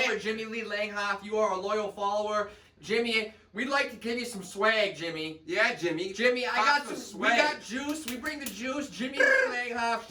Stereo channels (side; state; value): both; identical; correlation 1.00